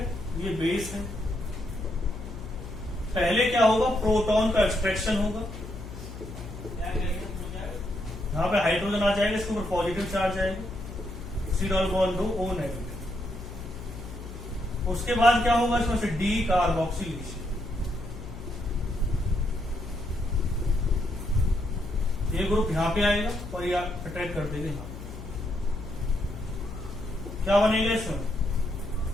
ये बेस है। पहले क्या होगा, प्रोटॉन का एक्सट्रैक्शन होगा, यहां पे हाइड्रोजन आ जाएगा, इसके ऊपर पॉजिटिव चार्ज आएगा, सिडॉल बॉन्ड दो ओ नेगेटिव। उसके बाद क्या होगा, इसमें से डी कार्बोक्सिलेशन। ये ग्रुप यहां पे आएगा और ये अटैक कर देगा यहां। क्या बनेगा इसमें,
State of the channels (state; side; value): noise; left; hum, 11 dB below the sound